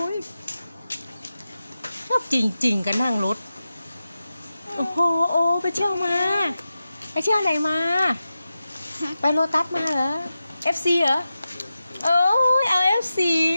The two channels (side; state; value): both; inverted; correlation -0.92